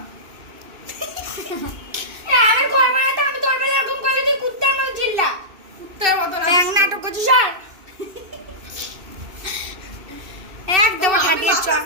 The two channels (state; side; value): late; left; 2.7 ms